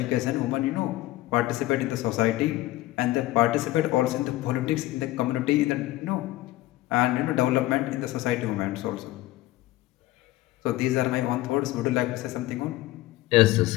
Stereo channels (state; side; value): quieter; right; 16.9 dB